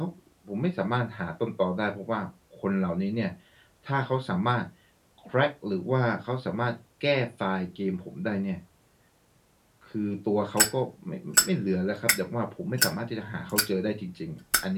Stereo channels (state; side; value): identical; both; correlation 1.00